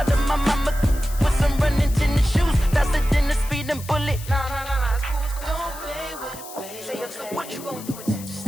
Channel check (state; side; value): noise; left; hiss, 15 dB below the sound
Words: of my mama with some running tennis shoes. Faster than the speeding bullet. Nah, it's cool, it's cool. Don't play with it, play. Say so what you gon' do with it?